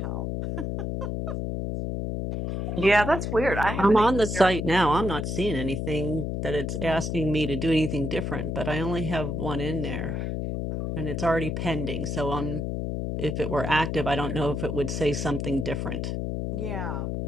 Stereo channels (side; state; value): left; noise; hum, 2 dB below the sound